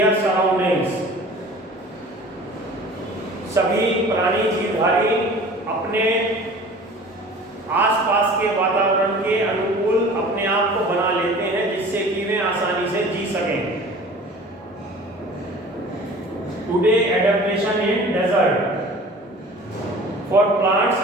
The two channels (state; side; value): normal; both; correlation 0.43